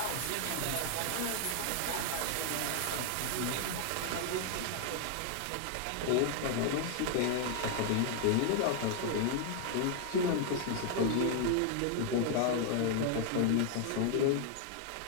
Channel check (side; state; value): both; different; correlation 0.00